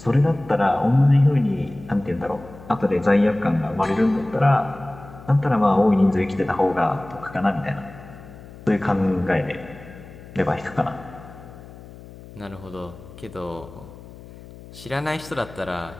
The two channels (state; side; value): noise; left; hum, 18 dB below the sound